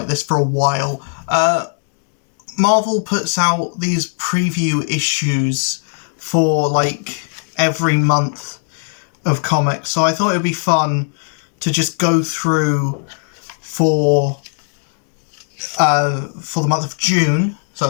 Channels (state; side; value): silent; right; 62 dB below the other